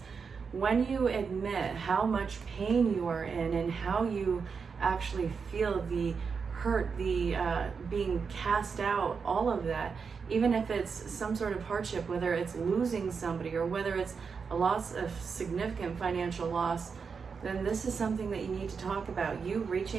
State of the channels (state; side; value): quieter; left; 5.6 dB